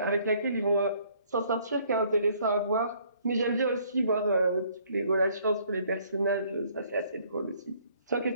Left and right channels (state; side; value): inverted; both; correlation -0.62